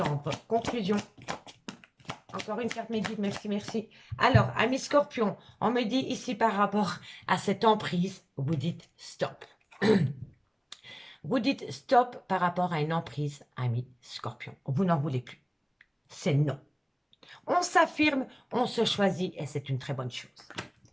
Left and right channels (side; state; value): both; identical; correlation 1.00